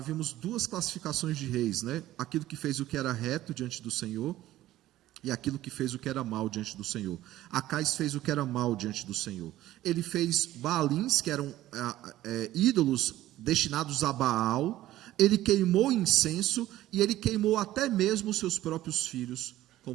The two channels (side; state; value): left; quieter; 14.7 dB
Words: 2 classificações de reis, né? Aquilo que fez o que era reto diante do Senhor e aquilo que fez o que era mal diante do Senhor. Acais fez o que era mal diante do Senhor. Ele fez Baalins, que eram ídolos destinados a Baal. Ele queimou incenso e ele queimou até mesmo seus próprios filhos,